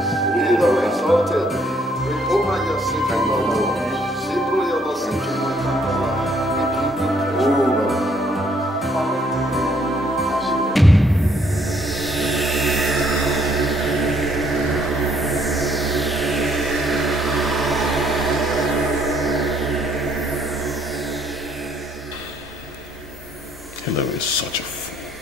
Be thou exalted. Hillary is such a fool.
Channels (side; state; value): both; normal; correlation 0.67